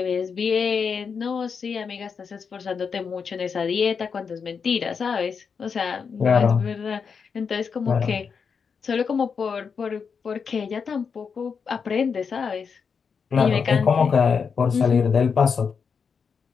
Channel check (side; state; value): right; quieter; 6.0 dB